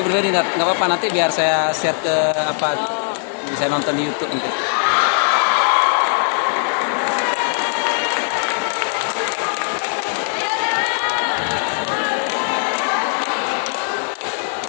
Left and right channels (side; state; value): right; silent; 57 dB below the other